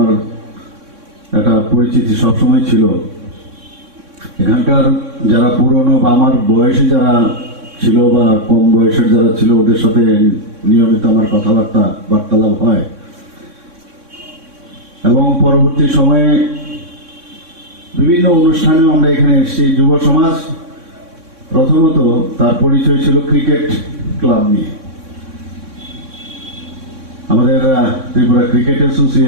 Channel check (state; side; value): late; left; 3.6 ms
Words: একটা পরিচিতি সবসময় ছিল। এখানকার যারা পুরনো বা আমার বয়সী যারা ছিল বা কম বয়সের যারা ছিল, ওদের সাথে নিয়মিত আমার বার্তালাপ হয়। এবং পরবর্তী সময়ে বিভিন্ন অনুষ্ঠানেও আমরা এখানে এসেছি। যুব সমাজ প্রথমত তার পরিচয় ছিল ক্রিকেট ক্লাব নিয়ে। আমাদের ত্রিপুরা ক্রিকেট